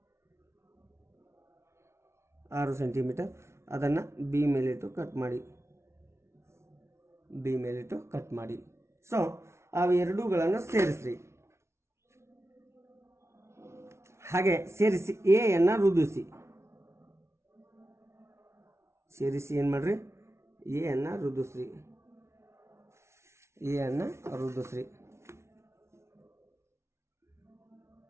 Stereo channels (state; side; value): late; left; 0.13 ms